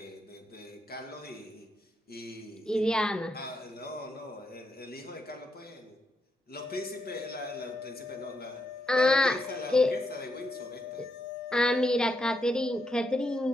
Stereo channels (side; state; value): both; normal; correlation 0.81